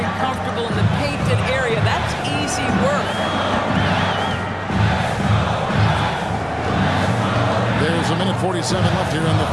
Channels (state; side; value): identical; both; correlation 1.00